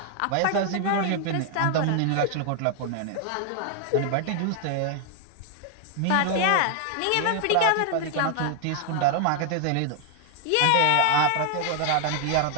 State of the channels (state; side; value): different; both; correlation 0.00